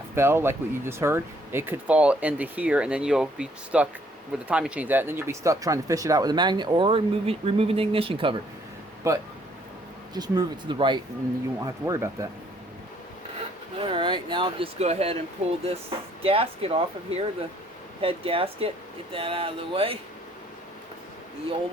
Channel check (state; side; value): normal; both; correlation 0.64